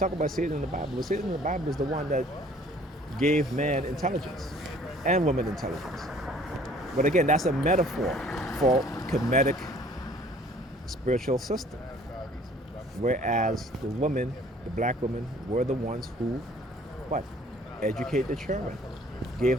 about Satan in the Bible. But Satan in the Bible is the one that gave man intelligence and woman intelligence. But again, that's a metaphor for Kemetic spiritual system. Whereas the women, the black women, were the ones who, educate the children,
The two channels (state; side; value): normal; both; correlation 0.55